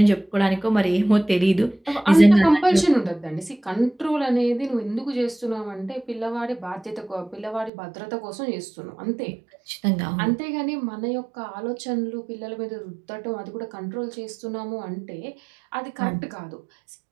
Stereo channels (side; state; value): left; drops out; at 7.7 s